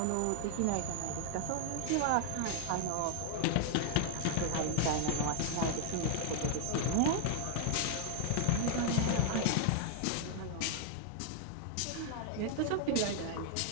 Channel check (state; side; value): different; both; correlation 0.00